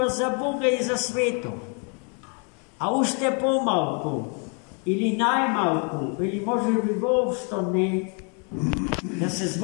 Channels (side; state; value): right; quieter; 37.8 dB